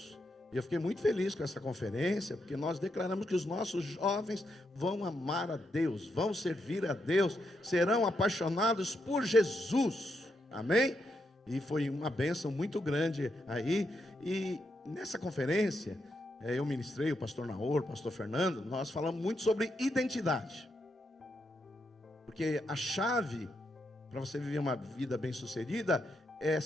E eu fiquei muito feliz com essa conferência, porque nós declaramos que os nossos jovens vão amar a Deus, vão servir a Deus, serão apaixonados por Jesus, amém? E foi uma bênção muito grande aí. E nessa conferência, eu ministrei, o pastor Naor, o pastor Fernando, nós falamos muito sobre identidade. Porque a chave para você viver uma vida bem-sucedida é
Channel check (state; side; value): normal; both; correlation 0.81